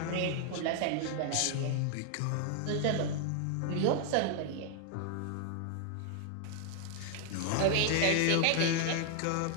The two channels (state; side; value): different; both; correlation 0.00